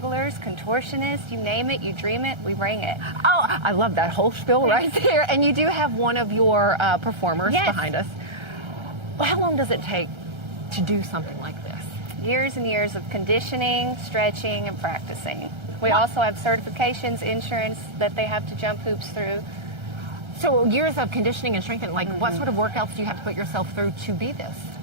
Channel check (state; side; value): late; left; 1.3 ms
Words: contortionists, you name it, you dream it, we bring it. Oh, I love that whole spiel right there. And you do have one of your performers behind us. Well, how long does it take to do something like this? Years and years of conditioning, stretching, and practicing. We also have certifications, insurance that they have to jump hoops through. So years of conditioning and strengthening, like what sort of workouts do you have to put yourself through to be this?